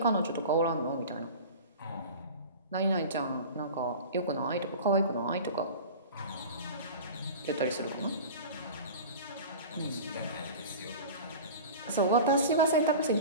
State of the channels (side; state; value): both; inverted; correlation -0.35